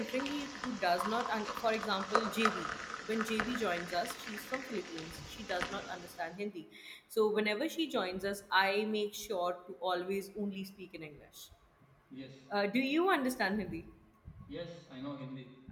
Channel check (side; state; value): both; identical; correlation 1.00